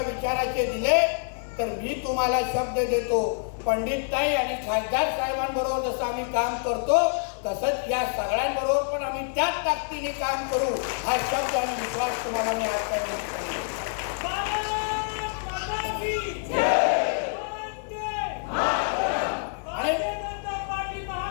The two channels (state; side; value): silent; right; 56 dB below the other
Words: विचाराचे दिले तर मी तुम्हाला शब्द देतो, पंडितताई आणि खासदार साहेबांबरोबर जसं आम्ही काम करतो तसंच या सगळ्यांबरोबर पण आम्ही त्याच ताकदीने काम करू, हा शब्द आणि विश्वास तुम्हाला मी आज